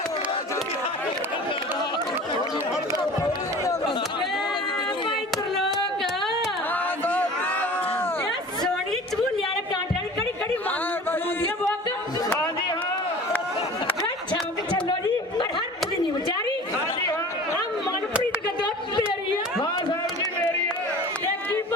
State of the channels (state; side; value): normal; both; correlation 0.41